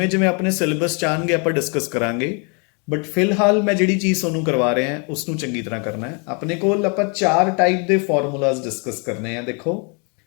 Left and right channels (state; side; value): quieter; right; 35.7 dB